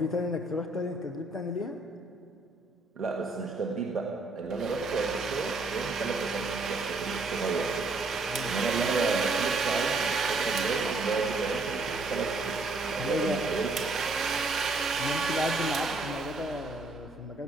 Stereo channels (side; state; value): left; quieter; 3.1 dB